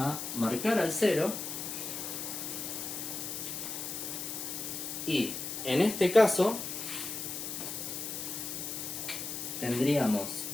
marcar al 0 y en este caso tendríamos,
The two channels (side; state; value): left; noise; hiss, 5 dB below the sound